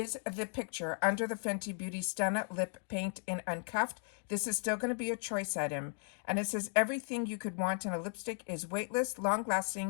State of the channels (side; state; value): right; silent; 54 dB below the other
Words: the picture under the Fenty Beauty Stunna Lip Paint in Uncuffed. This is still going to be a choice item. And it says, everything you could want in a lipstick is weightless,